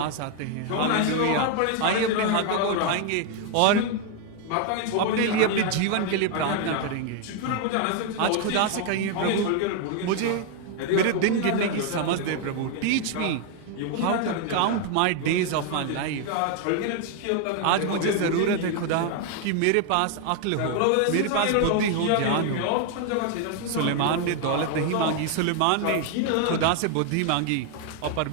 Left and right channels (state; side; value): different; both; correlation 0.01